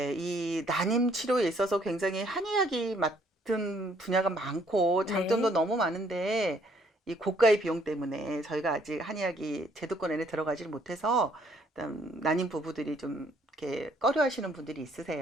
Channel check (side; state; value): both; normal; correlation 0.65